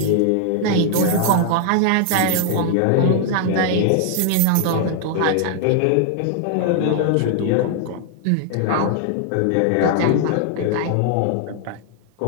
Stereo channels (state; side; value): different; both; correlation 0.00